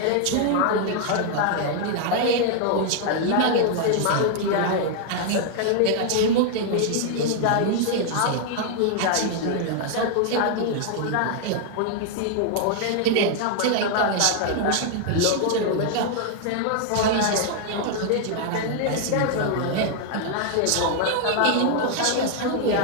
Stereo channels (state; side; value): different; both; correlation 0.00